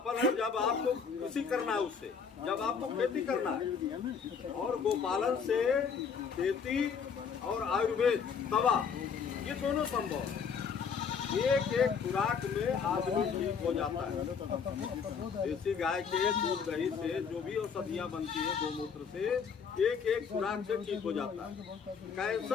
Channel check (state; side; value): quieter; right; 6.3 dB